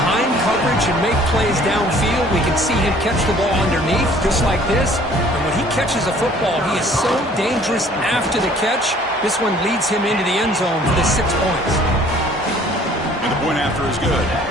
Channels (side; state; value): both; normal; correlation 0.55